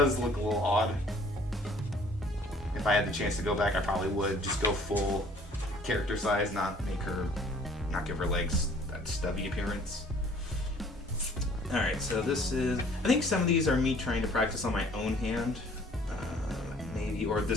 look a little odd. If I had the chance to go back, I probably would just go full character size, not give her legs that stubby appearance. Alright, so this is, I think some of these are me trying to practice on my own hand, maybe, or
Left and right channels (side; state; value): both; normal; correlation 0.55